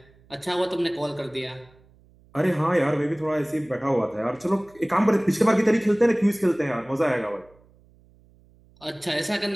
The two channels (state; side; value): noise; right; hum, 29 dB below the sound